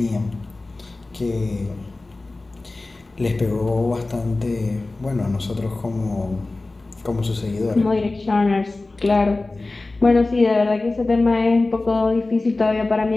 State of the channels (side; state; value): right; quieter; 3.2 dB